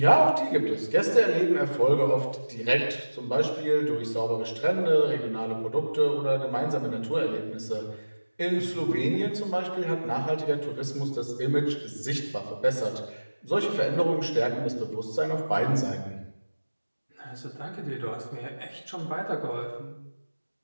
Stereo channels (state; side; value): inverted; both; correlation -1.00